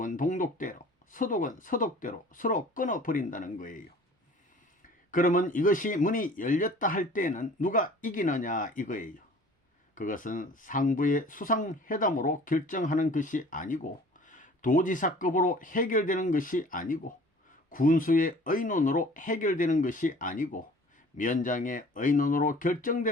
동독대로, 서독은 서독대로 서로 끊어버린다는 거예요. 그러면 이것이 문이 열렸다 할 때는 누가 이기느냐 이거예요. 그것은 상부의 수상회담으로 결정하는 것이 아니고 도지사급으로 해결되는 것이 아니고 군수의 의논으로 해결되는 것이 아니고 면장의 의논으로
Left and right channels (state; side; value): normal; both; correlation 0.48